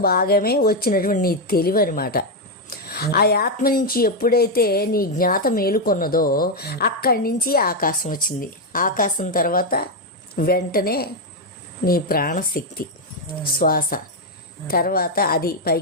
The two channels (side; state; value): both; normal; correlation 0.03